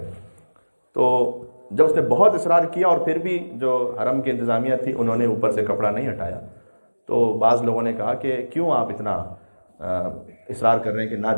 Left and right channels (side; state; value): both; inverted; correlation -1.00